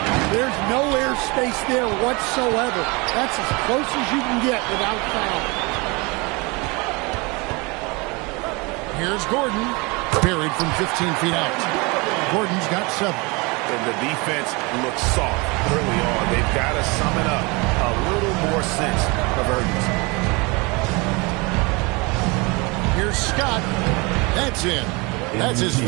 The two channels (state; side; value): quieter; left; 27.2 dB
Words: There's no air space there whatsoever. That's as close as you can get without foul. Here's Gordon. Buried from 15 feet out. Gordon's got 7. And the defense looks soft early on. They've got to summon up a little more sense of urgency. Here's Scott. That's in. That's his